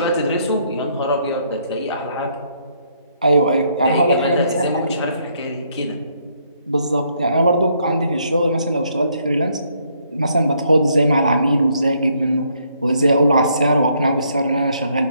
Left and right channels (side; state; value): both; inverted; correlation -0.71